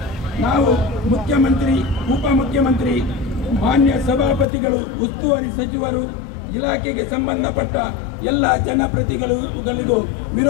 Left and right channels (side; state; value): right; drops out; at 4.5 s